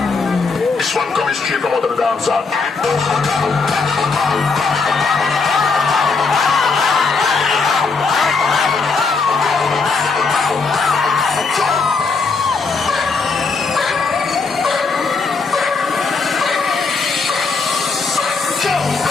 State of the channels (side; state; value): right; quieter; 4.5 dB